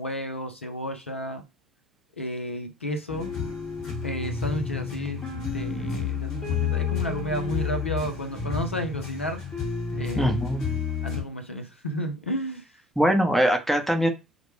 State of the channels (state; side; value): normal; both; correlation 0.49